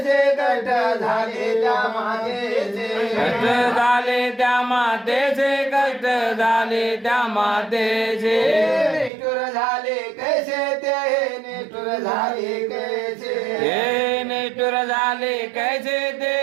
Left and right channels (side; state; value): left; drops out; at 9.1 s